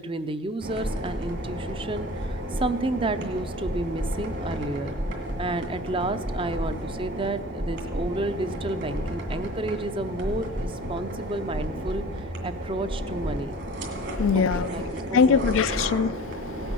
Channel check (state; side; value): normal; both; correlation 0.41